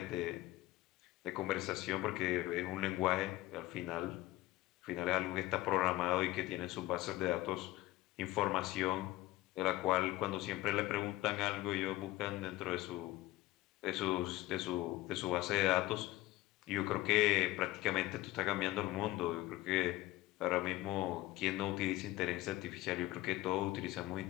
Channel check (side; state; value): right; quieter; 17.5 dB